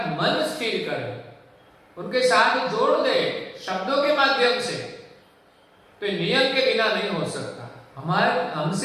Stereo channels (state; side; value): identical; both; correlation 1.00